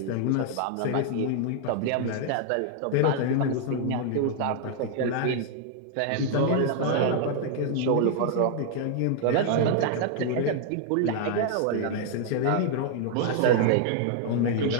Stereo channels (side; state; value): both; different; correlation 0.00